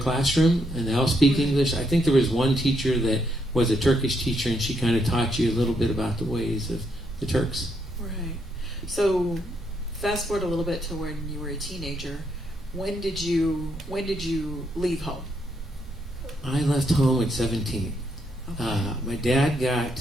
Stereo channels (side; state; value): both; normal; correlation 0.76